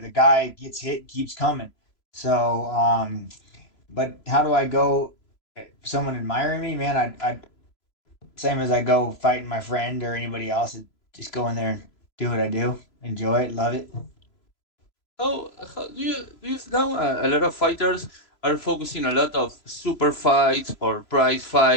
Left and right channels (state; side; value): late; right; 3.0 ms